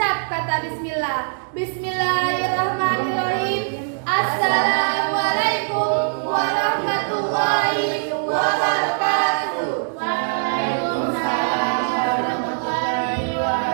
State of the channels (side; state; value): left; silent; digital silence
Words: kata bismillah. Bismillahirrahmanirrahim. Assalamualaikum warahmatullahi wabarakatuh. Waalaikumsalam warahmatullahi